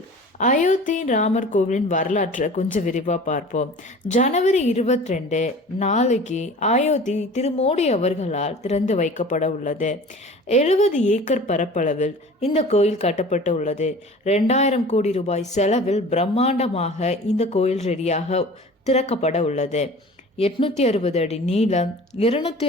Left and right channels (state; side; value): normal; both; correlation 0.42